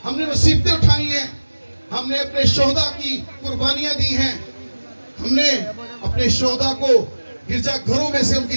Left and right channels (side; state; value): both; inverted; correlation -1.00